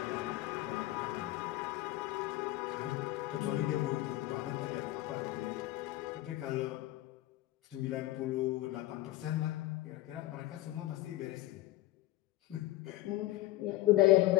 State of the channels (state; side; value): quieter; right; 16.7 dB